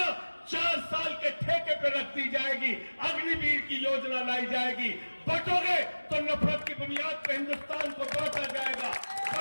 4 साल के ठेके पे रख दी जाएगी, अग्निवीर की योजना लाई जाएगी। बटोगे तो नफरत की बुनियाद पर हिंदुस्तान को बांटा जाएगा।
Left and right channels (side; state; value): both; inverted; correlation -1.00